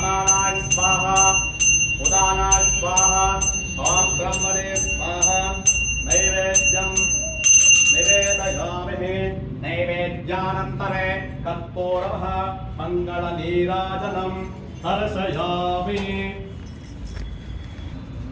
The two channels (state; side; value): identical; both; correlation 1.00